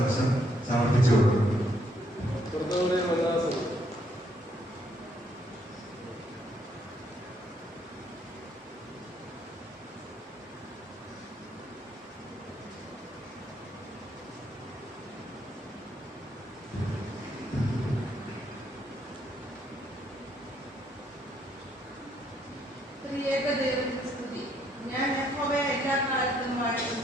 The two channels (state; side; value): normal; both; correlation 0.71